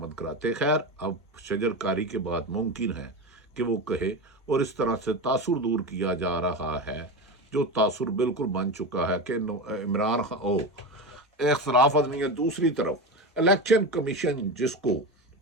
کراتے۔ خیر، اب شجر کاری کے بعد ممکن ہے کہ وہ کہے، اور اس طرح سے تاثر دور کیا جا رہا ہے، جو تاثر بالکل بن چکا ہے کہ عمران خان اختلاف نہیں ہے۔ دوسری طرف الیکشن کمیشن، جس کو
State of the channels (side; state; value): both; normal; correlation 0.21